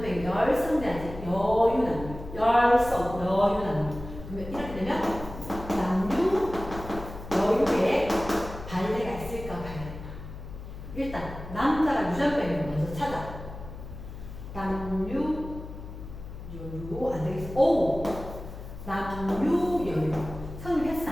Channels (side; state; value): left; noise; hum, 12 dB below the sound